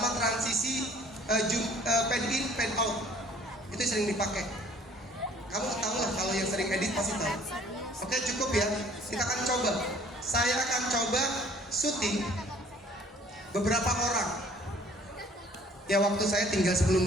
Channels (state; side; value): normal; both; correlation 0.54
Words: transisi fade in, fade out. Itu sering dipakai. Kamu tahu lah kalau yang sering edit pasti tahu. Oke, cukup ya. Kita akan coba. Saya akan coba syuting beberapa orang. Ya waktu saya tinggal 10